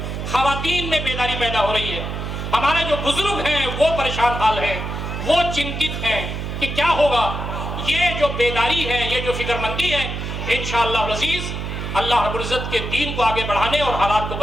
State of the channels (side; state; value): right; noise; hum, 5 dB below the sound